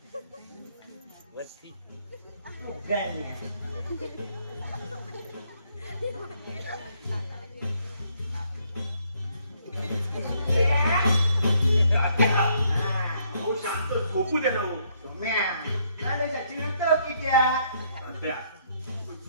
शांत झोपू दे ना.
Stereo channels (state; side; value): inverted; both; correlation -0.70